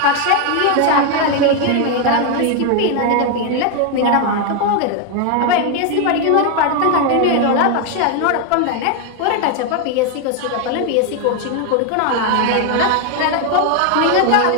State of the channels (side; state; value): both; different; correlation 0.01